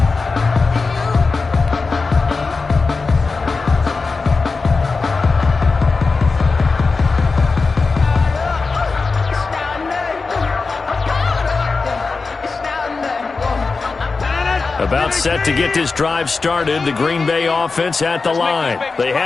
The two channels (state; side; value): quieter; right; 4.2 dB